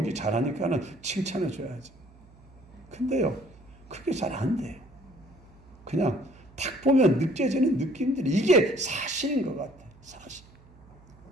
잘하니까는 칭찬해 줘야지. 근데요 그게 잘 안 돼요. 그냥 딱 보면 느껴지는 느낌들이 이게 사실인 것 같아요. 사실.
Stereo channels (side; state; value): right; noise; hum, 25 dB below the sound